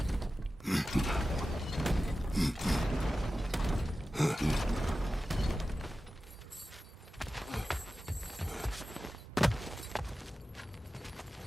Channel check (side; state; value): both; normal; correlation 0.94